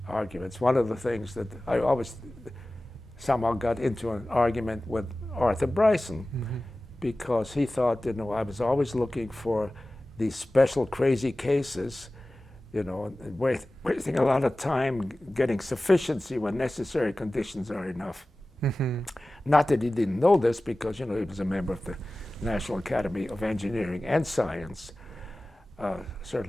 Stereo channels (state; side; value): normal; both; correlation 0.97